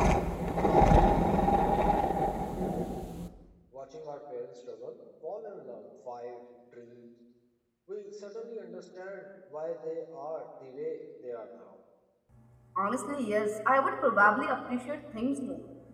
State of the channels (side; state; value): both; identical; correlation 1.00